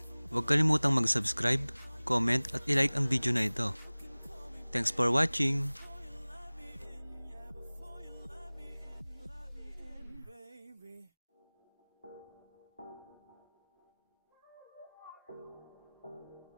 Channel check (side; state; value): both; inverted; correlation -1.00